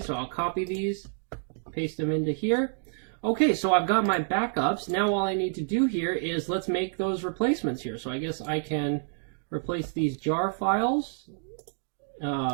I'll copy these, paste them into here. Okay, so I've got my backups. Now all I need to do here is let's make those replacements here. So I guess I can replace these jar files.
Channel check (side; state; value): left; silent; digital silence